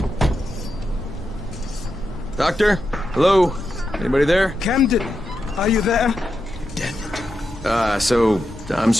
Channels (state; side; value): normal; both; correlation 0.87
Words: Doctor? Hello? Anybody there? Camden, are you there? So I'm